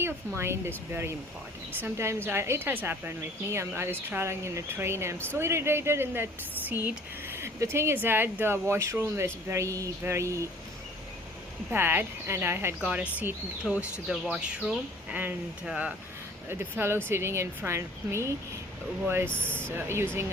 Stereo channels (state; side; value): normal; both; correlation 0.51